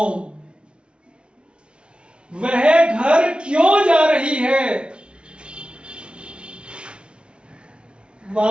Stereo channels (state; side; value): late; left; 0.057 ms